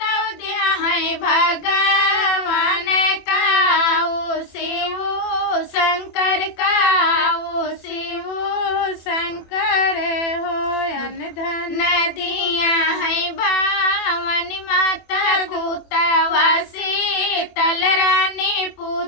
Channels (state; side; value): late; right; 24 ms